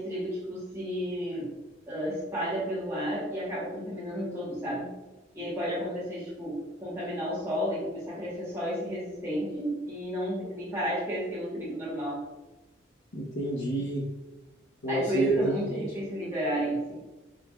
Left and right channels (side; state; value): both; normal; correlation 0.53